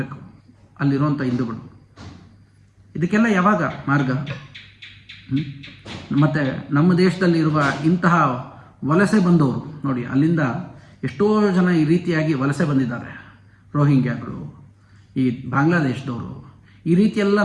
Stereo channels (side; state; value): both; identical; correlation 1.00